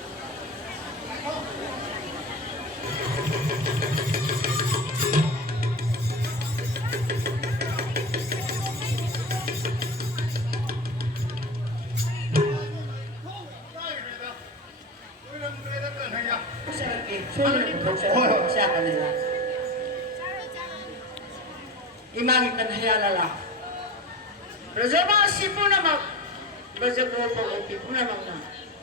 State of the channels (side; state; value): both; normal; correlation 0.28